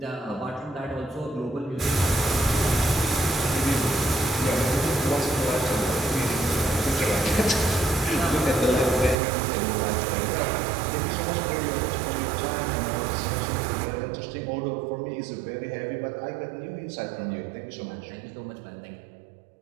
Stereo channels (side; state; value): left; drops out; at 9.2 s